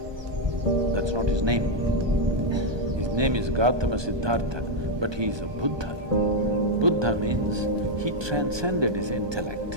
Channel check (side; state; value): left; late; 1.2 ms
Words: That's not his name. His name is Gautama Siddhartha, but he is a Buddha. Buddha means he transcended his